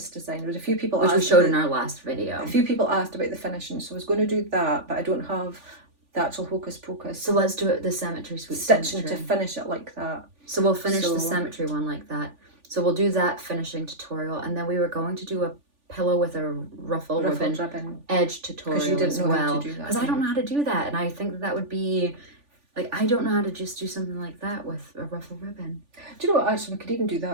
design. There was a few people which we showed in our last video. A few people asked about the finishing, so I was going to do that, but I don't have the actual Hocus Pocus. So let's do it the Cemetery Suite stitching cemetery. To finish it like that. So we'll finish the cemetery one like that. So we'll do that finishing tutorial, and then we were going to do a pillow with a ruffled ribbon edge tutorial as well. Because I don't know how to do that, and I think that would be... Like, I don't know how to just do something like that with a ruffled ribbon. Do you know what, actually, we could even do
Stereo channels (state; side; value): late; left; 3.4 ms